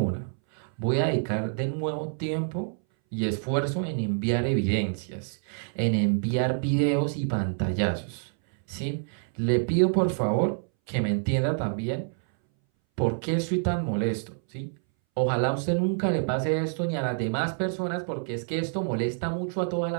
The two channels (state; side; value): silent; left; 60 dB below the other